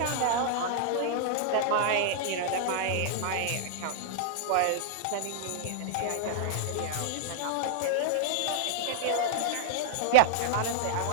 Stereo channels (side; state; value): both; different; correlation -0.01